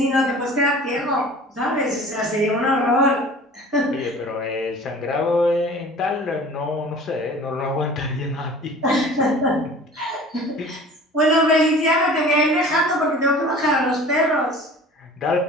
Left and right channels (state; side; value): normal; both; correlation 0.44